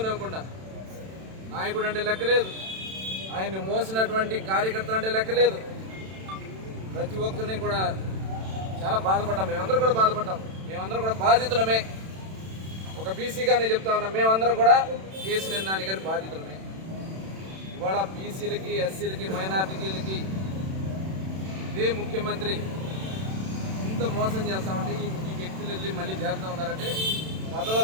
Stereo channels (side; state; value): left; late; 31 ms